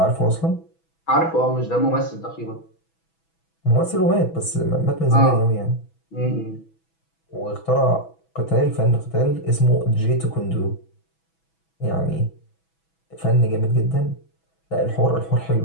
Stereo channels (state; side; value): late; right; 6.1 ms